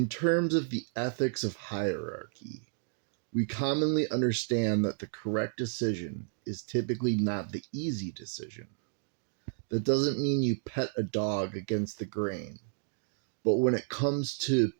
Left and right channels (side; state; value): left; silent; 57 dB below the other